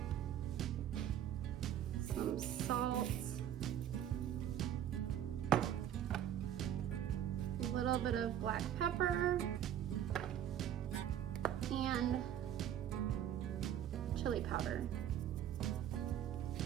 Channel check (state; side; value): quieter; left; 10.5 dB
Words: some salt, a little bit of black pepper, and chili powder.